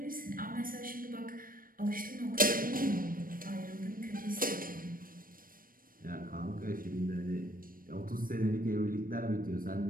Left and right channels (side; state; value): left; late; 0.41 ms